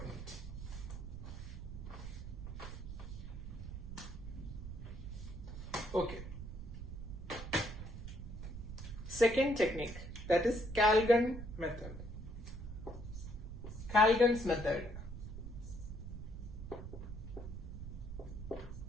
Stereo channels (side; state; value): right; noise; rumble, 8 dB below the sound